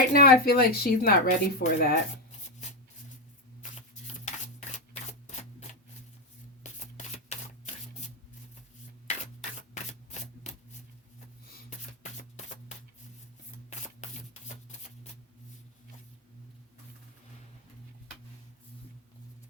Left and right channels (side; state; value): both; normal; correlation 0.07